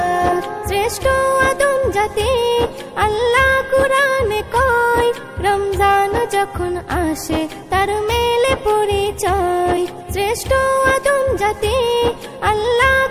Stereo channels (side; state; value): both; identical; correlation 1.00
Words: শ্রেষ্ঠ আদম জাতি আল্লাহ কুরআনে কয়, রমজান যখন আসে তার মেলে পরিচয়। শ্রেষ্ঠ আদম জাতি আল্লাহ